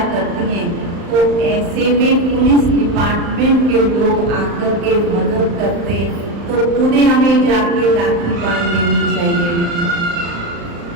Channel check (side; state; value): left; late; 35 ms